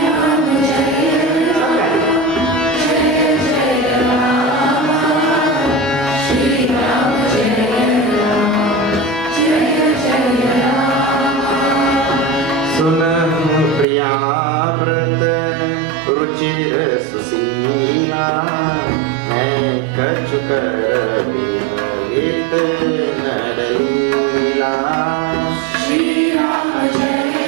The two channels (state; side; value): drops out; left; at 13.9 s